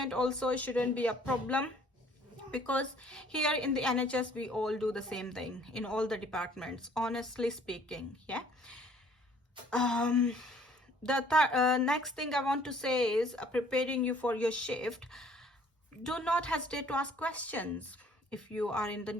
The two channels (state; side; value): normal; both; correlation 0.57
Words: also shouldn't be a problem, because here in the NHS we all do the same thing in all the departments, honestly speaking. Yeah. The next thing I want to say is preparing you for your shift. Do not hesitate to ask questions. If you are in the